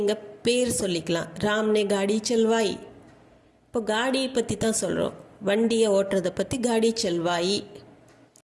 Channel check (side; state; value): both; identical; correlation 1.00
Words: பேர் சொல்லிக்கலாம், ராம்னே காடி செல்வாய். இப்போ காடியை பற்றி தான் சொல்கிறோம், வண்டியை ஓட்டுறதை பற்றி காடி செல்வாயி.